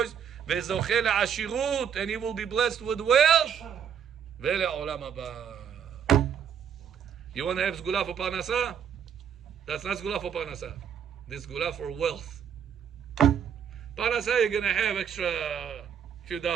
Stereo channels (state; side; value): quieter; left; 8.1 dB